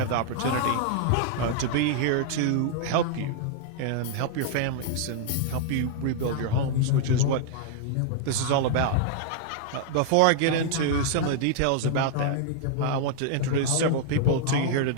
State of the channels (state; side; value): different; both; correlation -0.01